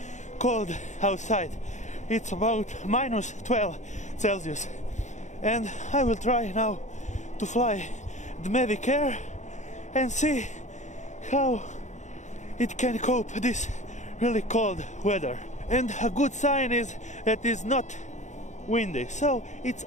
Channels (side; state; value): right; late; 0.34 ms